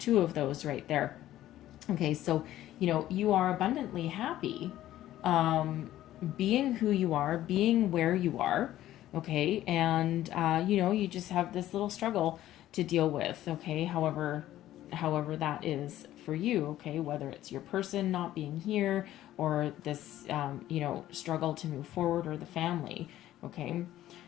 right there. Okay, so you are abundantly happy, being who you are, being where you are. Okay, and you just have this little struggle to deal with, okay, however that is for you, okay, whether it's your person not being here or this struggle to move forward, or the family, okay.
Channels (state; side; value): quieter; right; 13.7 dB